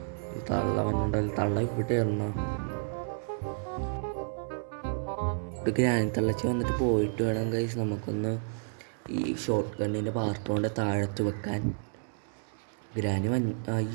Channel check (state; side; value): silent; left; 57 dB below the other